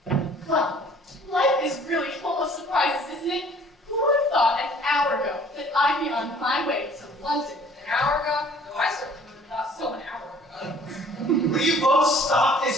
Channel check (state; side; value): normal; both; correlation 0.54